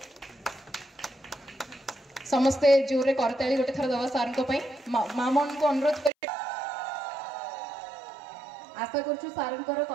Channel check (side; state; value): left; drops out; at 6.1 s